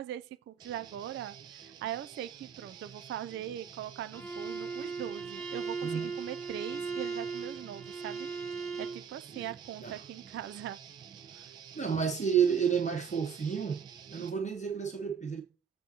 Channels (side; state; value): left; quieter; 7.0 dB